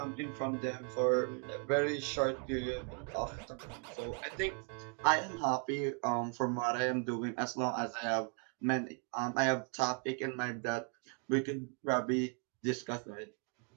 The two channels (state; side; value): quieter; left; 37.2 dB